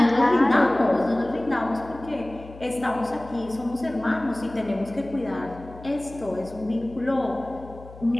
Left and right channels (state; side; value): noise; left; hum, 18 dB below the sound